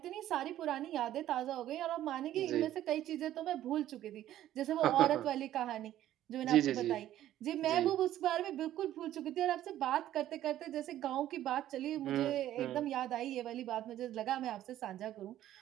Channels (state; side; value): quieter; left; 12.8 dB